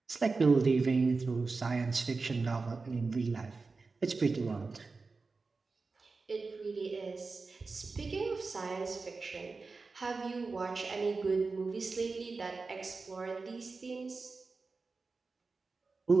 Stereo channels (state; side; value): quieter; left; 4.1 dB